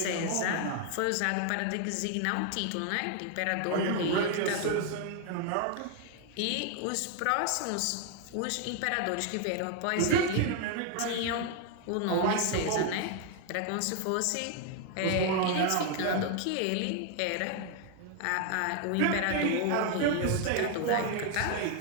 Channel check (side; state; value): both; different; correlation 0.00